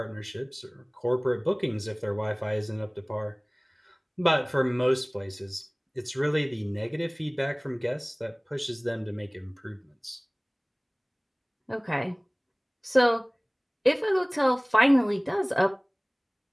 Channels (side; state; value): both; identical; correlation 1.00